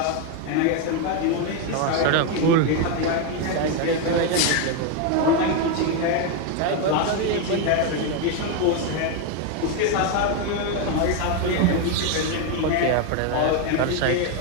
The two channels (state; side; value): different; both; correlation 0.02